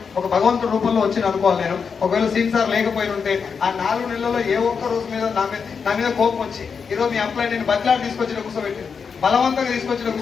ఒక భగవంతుడి రూపంలో వచ్చి అనుకోవాలి నేను. ఒకవేళ సీన్ సార్ లేకపోయి ఉంటే ఆ 4 నెలల్లో ఏ ఒక్క రోజు మీద నా మీద కోపం వచ్చి ఈరోజు మీ అప్లై నేను బదిలాడి తీసుకొచ్చిన కూర్చోబెట్టి బలవంతంగా తీసుకొచ్చిన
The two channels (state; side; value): quieter; right; 6.0 dB